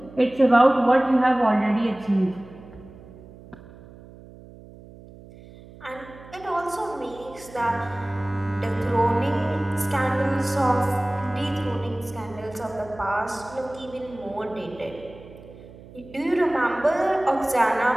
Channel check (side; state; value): right; noise; hum, 19 dB below the sound